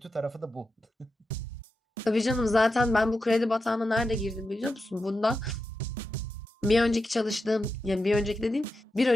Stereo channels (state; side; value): normal; both; correlation 0.89